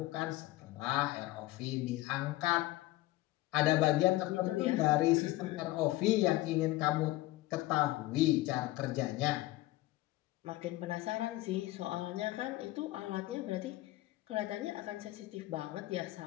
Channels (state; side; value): quieter; right; 17.9 dB